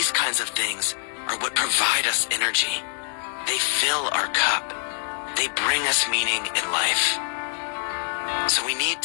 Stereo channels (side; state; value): right; silent; 62 dB below the other